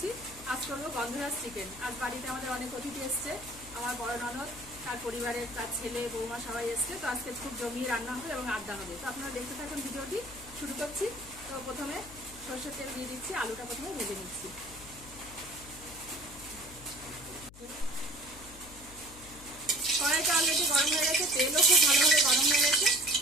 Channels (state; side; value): noise; left; hum, 19 dB below the sound